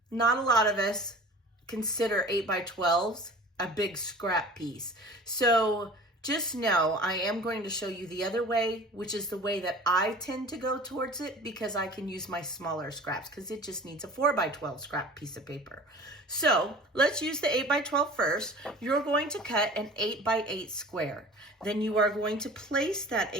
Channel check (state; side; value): normal; both; correlation 0.42